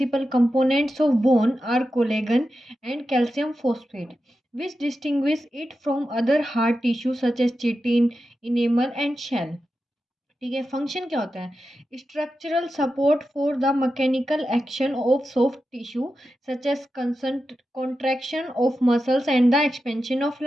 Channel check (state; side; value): normal; both; correlation 0.91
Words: components of bone are collagen and calcium phosphate which distinguish it from other hard tissue such as chitin, enamel and shell। ठीक है। Function क्या होता है? Structural support for the mechanical action of soft tissue such as contraction of muscles and the expansion of